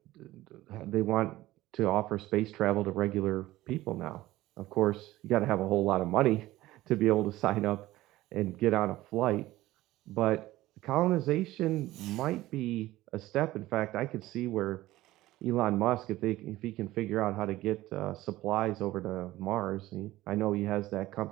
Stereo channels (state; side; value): quieter; left; 16.8 dB